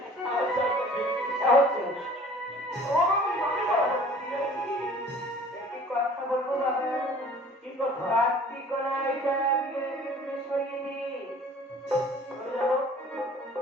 আচ্ছা হচ্ছে একটি কথা বলবো বাবা কি কথা কার্তিক রায়টা বিয়ে সরিয়ে দি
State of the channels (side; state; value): both; normal; correlation 0.49